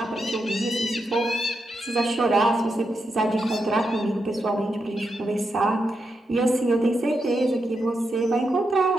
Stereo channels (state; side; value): normal; both; correlation 0.85